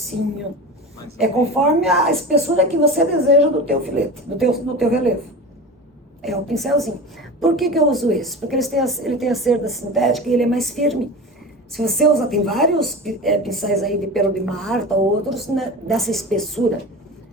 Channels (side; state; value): both; normal; correlation 0.30